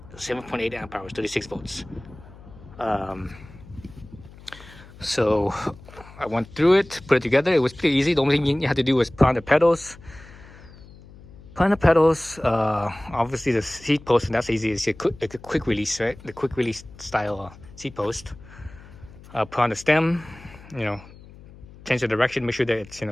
amp hours, 36 volts. So I went through it, put it together. It was pretty easy. The only thing you had to do was put on the pedals. Obviously the seat post, and that's easy. It's a quick release, right? The quick release style seat post. Put on the stem, change the direction, make sure that it's,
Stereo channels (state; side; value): noise; left; hum, 20 dB below the sound